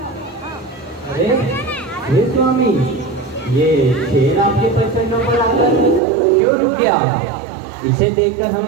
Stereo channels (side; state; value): left; drops out; at 6.0 s